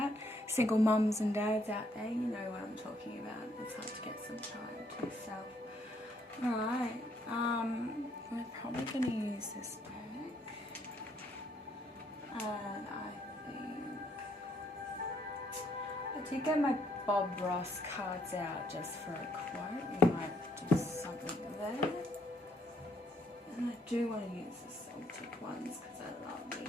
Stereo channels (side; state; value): both; normal; correlation 0.70